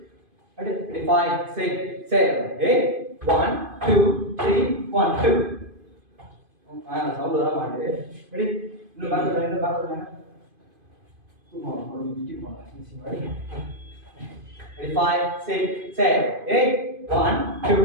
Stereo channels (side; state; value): left; late; 2.5 ms